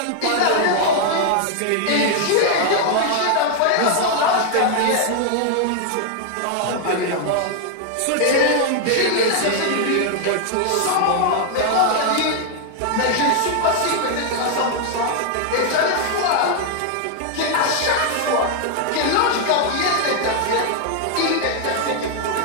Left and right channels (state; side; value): different; both; correlation 0.00